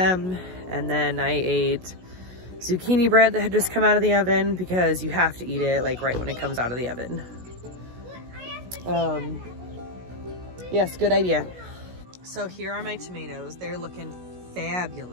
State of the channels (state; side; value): late; left; 16 ms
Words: and then I ate zucchini bread that had just come out of the oven because you have to eat it like right when it comes out of the oven. Yes, good idea. So here are my tomatoes. They're looking